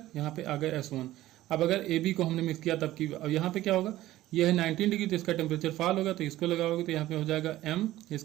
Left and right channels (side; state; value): left; quieter; 15.4 dB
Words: यहाँ पे आ गया S1। अब अगर ए बी को हमने मिक्स किया तब की, अब यहाँ पे क्या होगा, ये है 19 डिग्री, तो इसका टेम्परेचर फॉल होगा, तो इसको लगाओगे तो यहाँ पे हो जाएगा M,